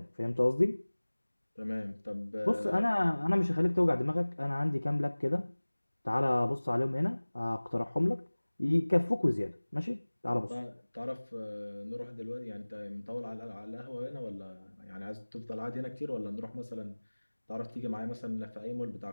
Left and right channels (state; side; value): inverted; both; correlation -1.00